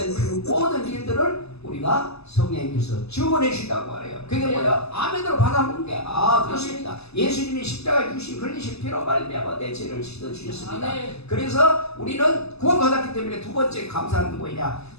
그 모든 일들을 우리가 성령님께서 증언해 주신다고 말해요. 그게 뭐야? 아멘으로 받아먹는 게 그렇습니다. 예수님이 십자가에 주신 흘리신 피로 말미암아 내 죄를 씻어 주셨습니다. 그래서 우리는 구원받았기 때문에 두 번째 감사하는 게 뭐냐?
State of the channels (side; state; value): right; late; 0.79 ms